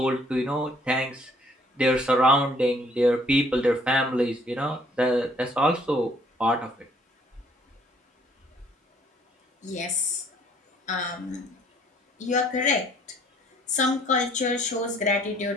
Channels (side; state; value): both; normal; correlation 0.61